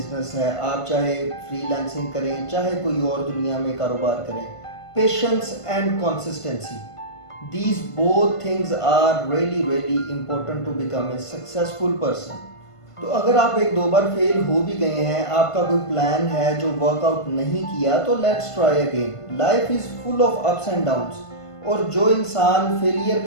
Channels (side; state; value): right; late; 1.5 ms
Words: है, आप चाहे फ्रीलांसिंग करें चाहे कोई और दुनिया में कारोबार करें, patience and consistency, these both things are really important to become a successful person। तो अगर आप एक दो बार फेल हो भी गए हैं, आपका कोई प्लान है जो वर्कआउट नहीं किया, तो let's try again. Life is full of ups and downs, और जो इंसान फेलियर